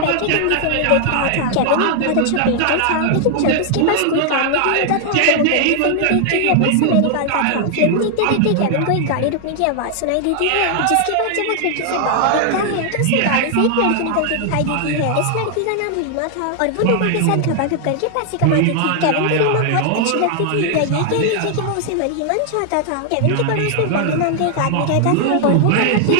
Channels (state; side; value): different; both; correlation 0.00